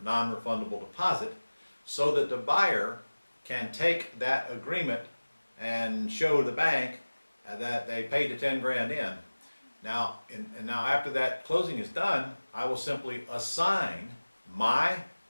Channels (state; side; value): inverted; both; correlation -1.00